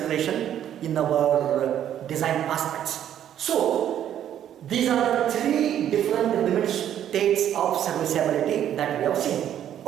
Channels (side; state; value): left; quieter; 10.5 dB